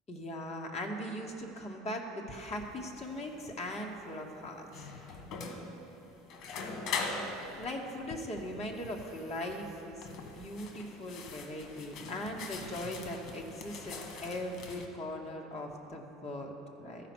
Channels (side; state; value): both; normal; correlation 0.43